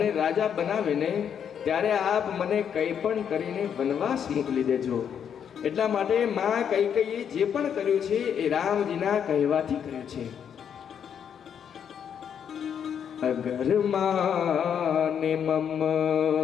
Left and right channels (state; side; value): quieter; right; 8.2 dB